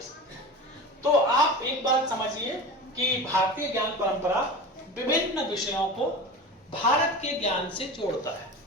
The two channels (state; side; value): normal; both; correlation 0.31